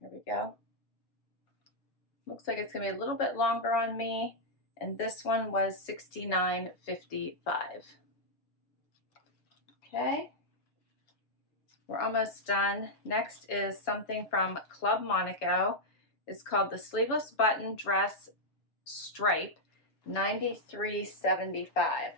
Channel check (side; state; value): right; late; 7.1 ms